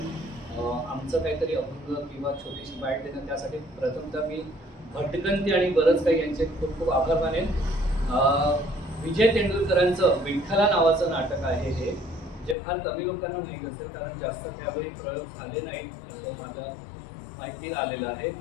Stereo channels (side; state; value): right; drops out; at 12.6 s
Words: आमचं काहीतरी अभंग किंवा छोटीशी बाईट देणं. त्यासाठी प्रथमतः मी भटकंती आणि बरंच काही यांचे खूप खूप आभार मानेन. विजय तेंडुलकरांचं विठ्ठला नावाचं नाटक आहे हे, जे फार कमी लोकांना माहीत असेल कारण जास्त त्यावेळी प्रयोग झाले नाहीत असं माझ्या माहितीत आलेलं आहे.